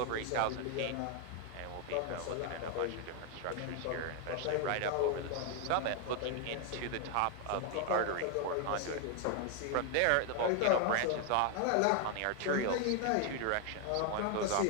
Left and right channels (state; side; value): different; both; correlation 0.00